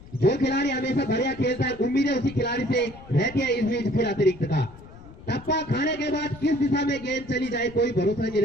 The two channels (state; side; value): noise; left; rumble, 19 dB below the sound